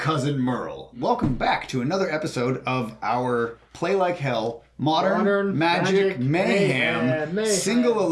Merle. Welcome back to another episode of our Play Like Hell, Modern Magic Mayhem, Single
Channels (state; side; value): identical; both; correlation 1.00